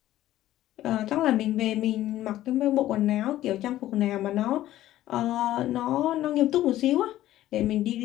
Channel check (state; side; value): quieter; right; 14.1 dB